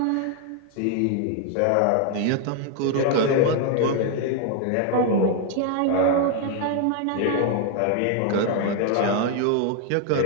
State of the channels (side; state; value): both; different; correlation 0.01